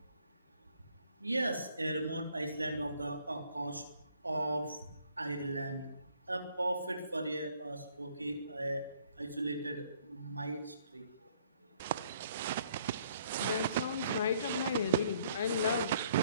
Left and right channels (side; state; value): both; inverted; correlation -0.63